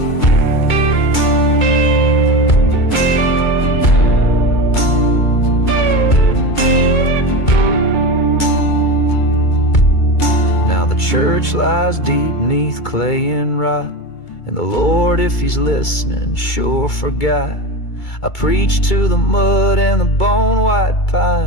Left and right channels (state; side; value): late; right; 2.3 ms